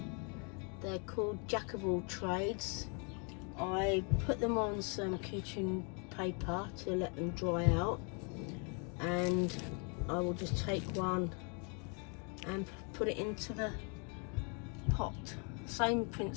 They're called Jack of All Trades. I put them on some kitchen paper to let them dry out, and I will just take one and put it into the pot. Same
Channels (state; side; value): quieter; right; 37.1 dB